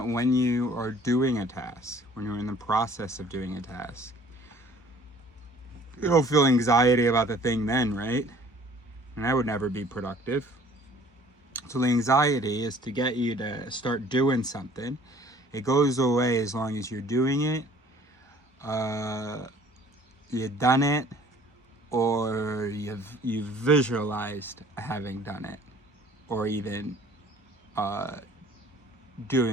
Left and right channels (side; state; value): both; normal; correlation 0.53